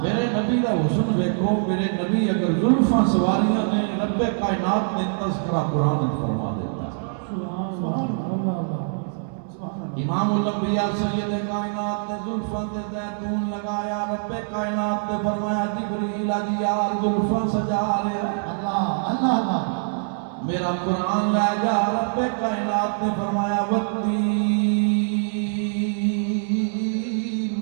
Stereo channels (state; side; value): silent; left; digital silence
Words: میرے نبی دا حسن ویکھو. میرے نبی اگر زلفاں سواریاں نے رب کائنات نے تذکرہ قرآن وچ فرما دیتا. امام الانبیاء سید کائنات نے زلفاں تے زیتون لگایا. رب کائنات نے فرمایا جبریل آجی یار زلفاں سجا رہا. اللہ میرا قرآن لے جا. رب کائنات نے فرمایا والتین